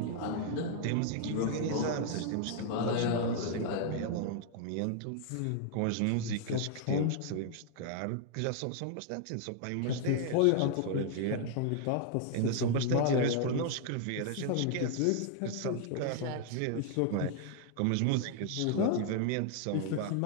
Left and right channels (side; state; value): both; different; correlation 0.00